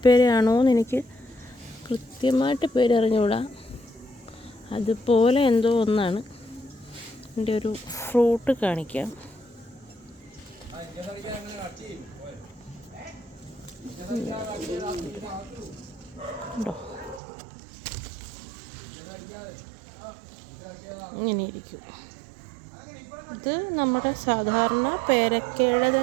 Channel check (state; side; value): drops out; left; at 17.2 s